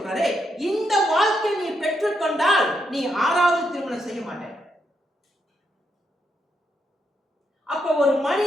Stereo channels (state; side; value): normal; both; correlation 0.80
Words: இந்த வாழ்க்கை நீ பெற்றுக்கொண்டால் நீ 6வது திருமணம் செய்ய மாட்ட. அப்ப ஒரு